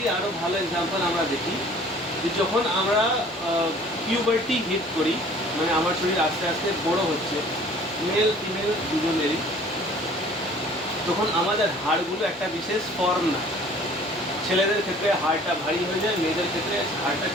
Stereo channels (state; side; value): normal; both; correlation 0.51